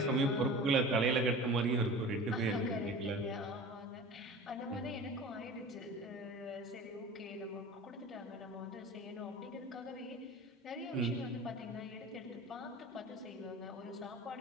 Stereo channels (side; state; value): both; normal; correlation 0.37